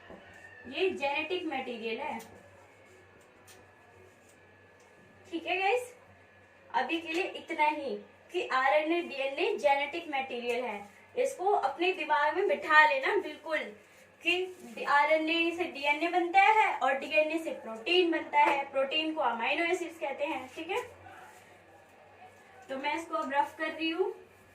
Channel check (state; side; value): identical; both; correlation 1.00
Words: ये जेनेटिक मटेरियल है, ठीक है गाइस। अभी के लिए इतना ही कि RNA, DNA जेनेटिक मटेरियल है। इसको अपने दिमाग में बिठा लेना बिल्कुल कि RNA से DNA बनता है और DNA से प्रोटीन बनता है, प्रोटीन को अमाइनो एसिड्स कहते हैं, ठीक है। तो मैं इसको अब रफ कर रही हूँ,